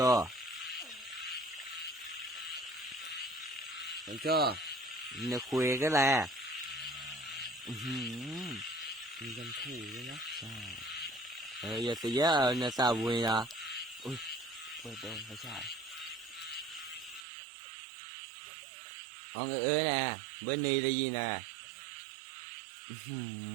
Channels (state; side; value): drops out; left; at 17.2 s